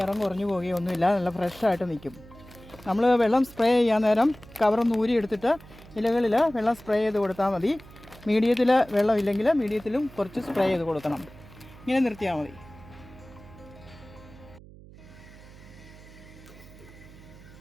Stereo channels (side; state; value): right; noise; hum, 20 dB below the sound